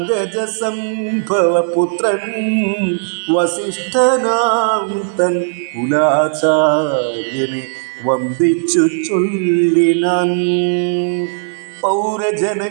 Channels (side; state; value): left; silent; 62 dB below the other